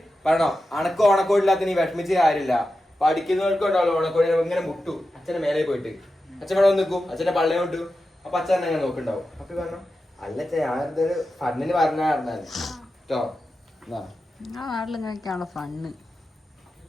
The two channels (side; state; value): both; normal; correlation 0.91